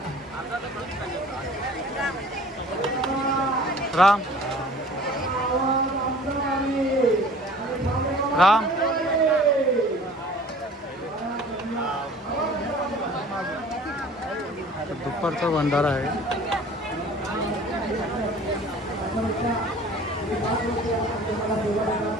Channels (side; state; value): both; normal; correlation 0.47